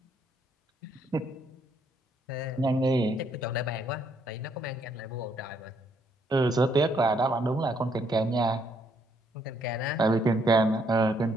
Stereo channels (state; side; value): normal; both; correlation 0.71